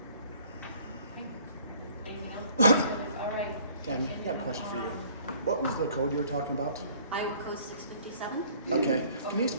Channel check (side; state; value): both; inverted; correlation -0.55